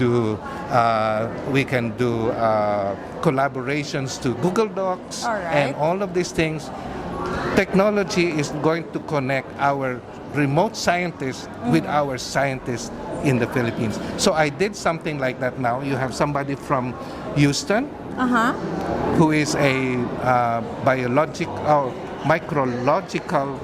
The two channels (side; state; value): both; identical; correlation 1.00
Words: collaborations to Google Docs, All right. and all of these things. Technology is going to connect our remote scientists with our scientists in the Philippines. So I did something like that now. You have somebody from Houston who is a micrological